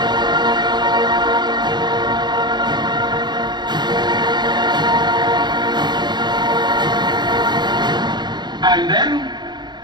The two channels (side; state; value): left; late; 0.21 ms